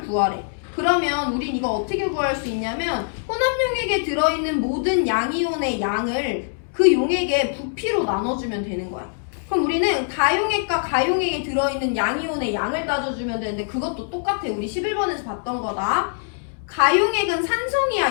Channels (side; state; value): right; silent; digital silence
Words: 구하래. 그러면 우린 이거 어떻게 구할 수 있냐면, 혼합용액에 들어있는 모든 양이온의 양을 그 용액의 부피로 나눠주면 되는 거야. 그럼 우리는 다용액과 가용액에 들어있는 양이온의 양을 따져주면 되는데, 그것도 똑같아. 우리 11번에서 봤던 거다. 가용액은